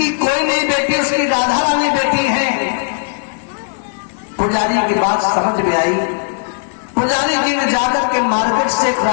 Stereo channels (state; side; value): silent; right; digital silence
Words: कोई नहीं बेटी उसकी राधा रानी बेटी है। पुजारी की बात समझ में आई। पुजारी जी ने जाकर के मार्केट से एक